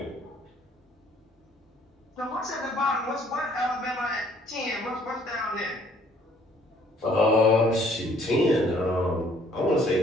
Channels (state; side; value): normal; both; correlation 0.61